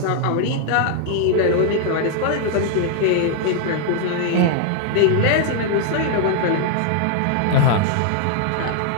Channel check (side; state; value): both; different; correlation 0.00